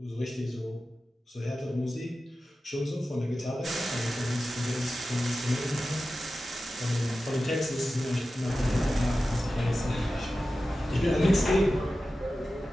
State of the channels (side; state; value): both; normal; correlation 0.94